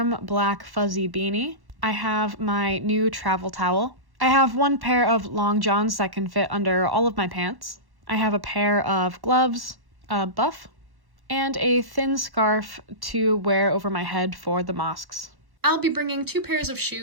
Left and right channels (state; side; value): late; left; 1.1 ms